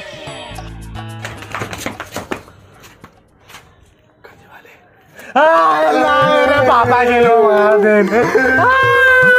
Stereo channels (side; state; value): both; identical; correlation 1.00